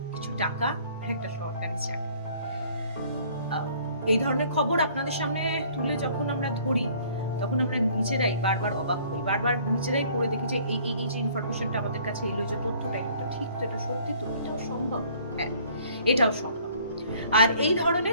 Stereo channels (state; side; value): inverted; both; correlation -0.57